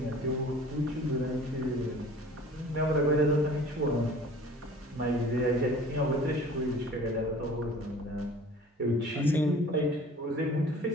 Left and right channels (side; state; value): both; normal; correlation 0.46